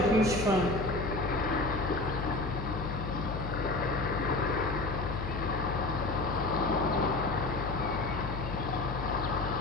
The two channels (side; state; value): left; noise; hum, 5 dB below the sound